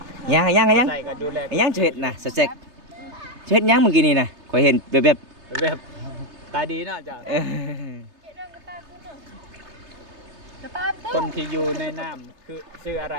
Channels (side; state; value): left; late; 3.3 ms